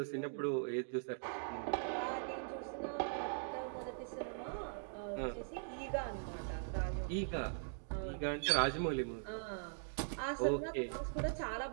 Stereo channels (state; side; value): silent; left; digital silence